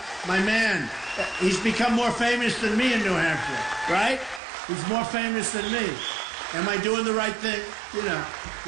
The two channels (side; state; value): left; drops out; at 4.4 s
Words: my man. He's become more famous than me in New Hampshire, right? He's more famous than me. Am I doing the right thing? You know,